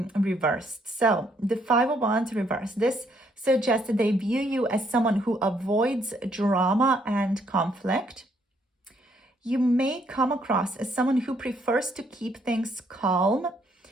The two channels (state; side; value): normal; both; correlation 0.70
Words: reversed. So the Five of Wands reversed. This suggests that they view you as someone who avoids drama and conflict. You may come across as someone who prefers to keep things calm,